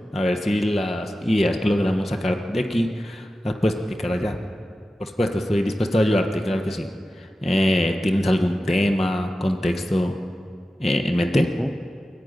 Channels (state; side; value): normal; both; correlation 0.93